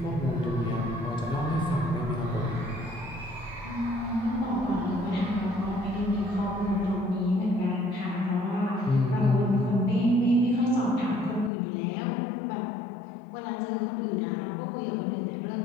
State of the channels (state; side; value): drops out; right; at 11.5 s